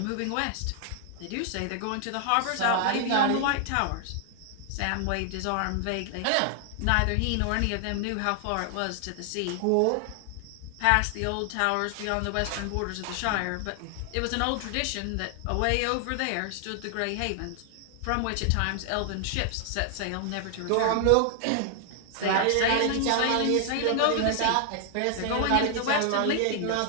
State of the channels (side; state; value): both; different; correlation 0.00